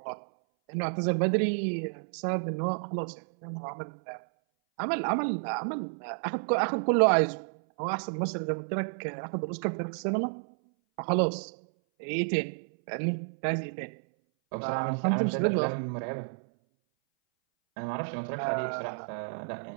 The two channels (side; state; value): left; silent; 57 dB below the other